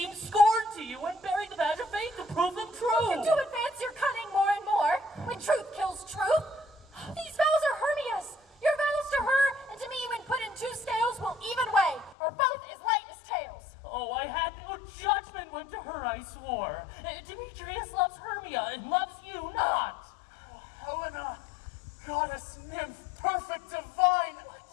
scorn to you when bearing the badge of faith to prove them true? To advance your cunning more and more, when truth kills truth. These vows are Hermia's. Your vows to her and to me when put in 2 scales will even weigh, or both as light as tails. Oh, I had no judgment when to her I swore. Demetrius loves Hermia and loves you not. Oh, Helena, goddess, nymph, perfect, divine.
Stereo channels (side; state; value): right; drops out; at 12.2 s